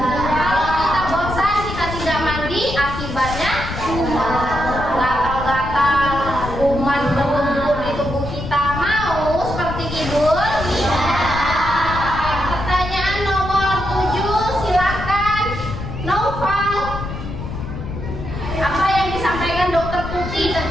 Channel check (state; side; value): noise; left; rumble, 7 dB below the sound